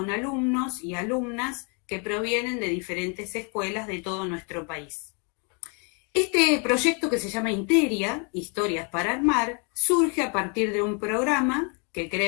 alumnos y alumnas que provienen de diferentes escuelas de todo nuestro país. Este proyecto, que se llama Interia, Historias para Armar, surge a partir de un programa que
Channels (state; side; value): quieter; right; 36.0 dB